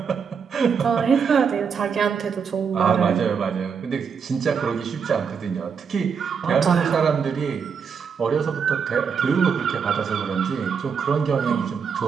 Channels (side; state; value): left; quieter; 6.4 dB